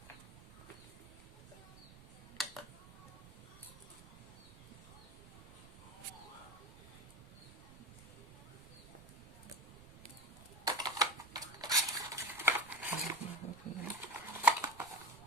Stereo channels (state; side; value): noise; right; rumble, 19 dB below the sound